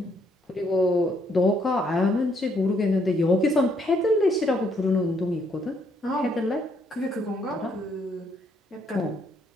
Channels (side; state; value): both; normal; correlation 0.71